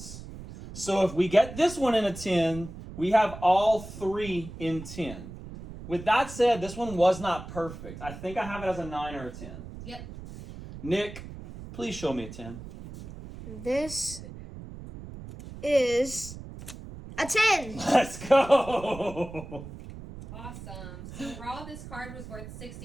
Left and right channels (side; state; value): right; noise; rumble, 13 dB below the sound